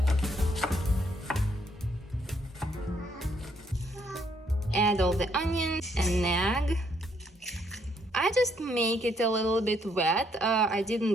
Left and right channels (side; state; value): both; normal; correlation 0.71